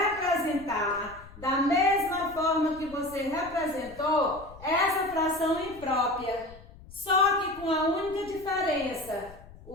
da mesma forma que você representou essa fração imprópria, só que com a única diferença,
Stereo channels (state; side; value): noise; left; rumble, 20 dB below the sound